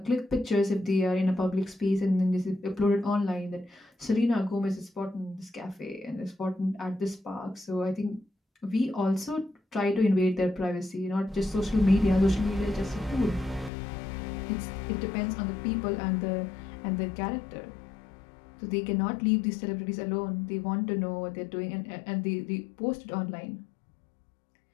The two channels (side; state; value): right; drops out; at 13.7 s